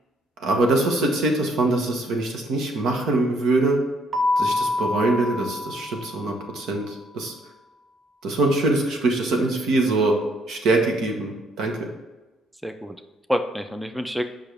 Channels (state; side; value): normal; both; correlation 0.68